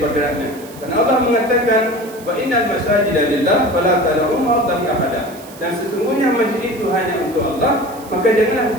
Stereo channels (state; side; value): noise; right; hiss, 20 dB below the sound